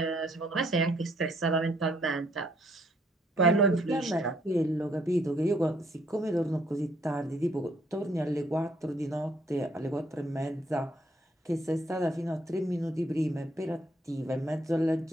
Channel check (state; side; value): normal; both; correlation 0.68